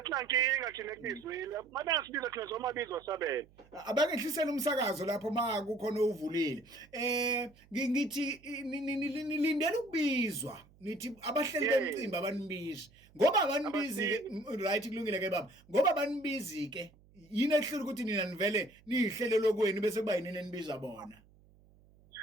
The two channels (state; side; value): noise; right; hum, 28 dB below the sound